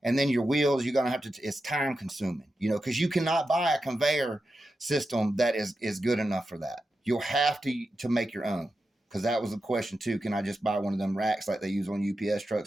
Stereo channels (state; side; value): normal; both; correlation 0.90